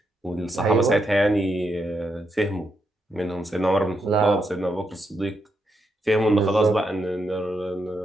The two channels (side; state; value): both; normal; correlation 0.81